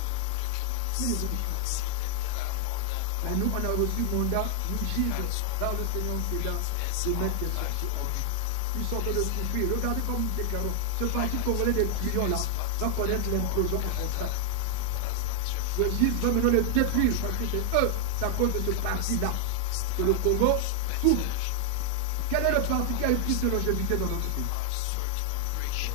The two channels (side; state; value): both; different; correlation 0.00